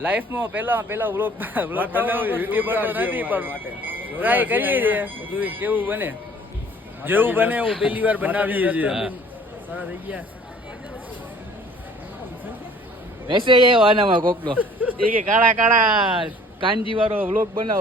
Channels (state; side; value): normal; both; correlation 0.53